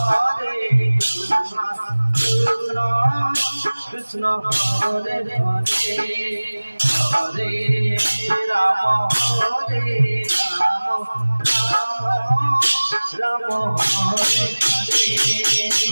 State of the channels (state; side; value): inverted; both; correlation -1.00